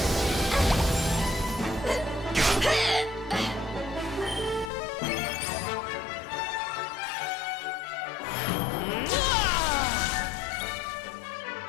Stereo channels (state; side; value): drops out; right; at 4.7 s